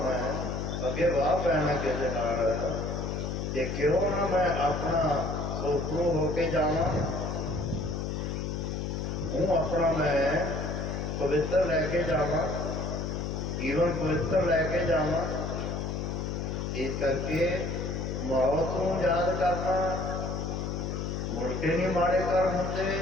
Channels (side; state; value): left; noise; hum, 3 dB below the sound